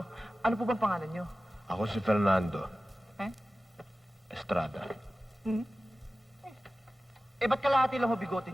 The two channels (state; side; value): normal; both; correlation 0.95